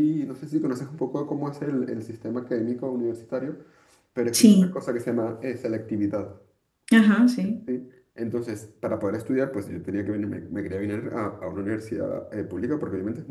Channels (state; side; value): identical; both; correlation 1.00